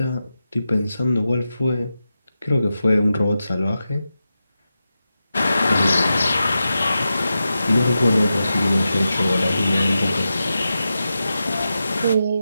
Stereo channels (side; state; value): both; inverted; correlation -0.91